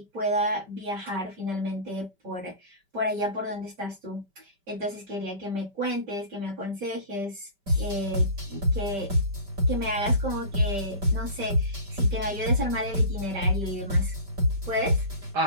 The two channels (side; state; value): left; late; 5.1 ms